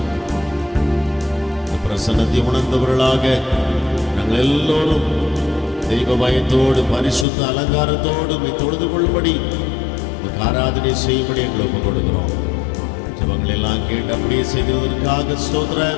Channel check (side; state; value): right; drops out; at 7.2 s